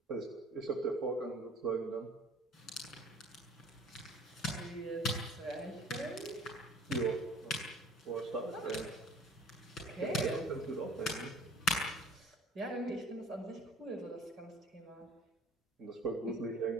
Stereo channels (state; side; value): normal; both; correlation 0.49